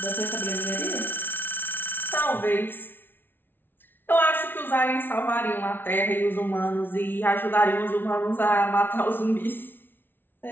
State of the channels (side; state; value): right; late; 0.10 ms